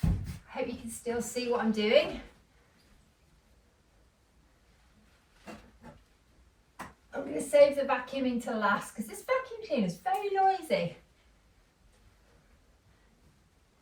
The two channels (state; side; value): identical; both; correlation 1.00